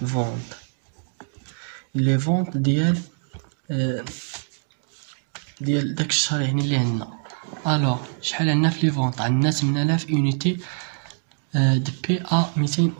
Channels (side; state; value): left; silent; 58 dB below the other